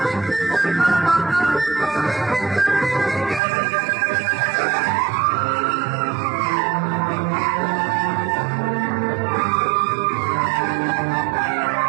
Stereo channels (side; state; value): left; drops out; at 3.4 s